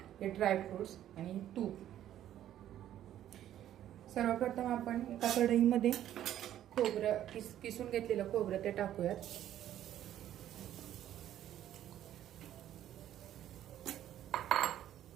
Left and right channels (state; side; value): quieter; left; 11.7 dB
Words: हे ड्रायफ्रुट्स आणि तूप। सर्वप्रथम आपण एका कढईमध्ये खोबरं किसून घेतलेलं खोबरं ते टाकूयात।